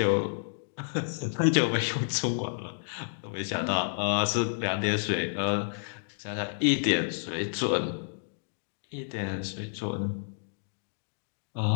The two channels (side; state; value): right; silent; digital silence